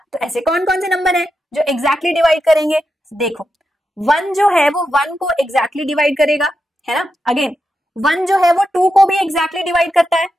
तो ऐसे कौन कौन से नंबर है जो एग्जैक्टली डिवाइड करेंगे। देखो 1 जो है वो 1 को एग्जैक्टली डिवाइड करेगा, है ना। अगेन 1 जो है वो 2 को भी एग्जैक्टली डिवाइड करता है,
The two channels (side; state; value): both; normal; correlation 0.87